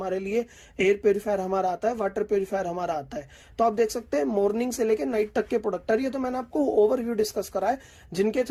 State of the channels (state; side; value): identical; both; correlation 1.00